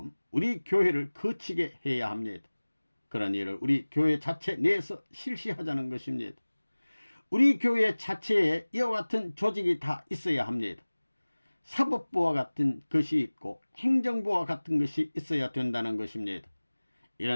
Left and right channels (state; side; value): inverted; both; correlation -1.00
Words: 우리 교회를 거치게 해야 합니다. 그런 일을 우리 교회 자체 내에서 실시하자는 것입니다. 우리 교회 자체에 이와 같은 조직이 다 있어야 합니다. 사법부와 같은 것이 있고 행정부와 같은 것이 있어야 된다는 것입니다.